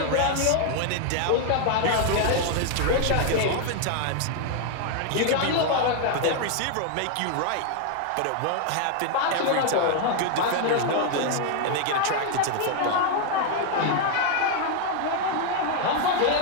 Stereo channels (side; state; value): both; different; correlation 0.00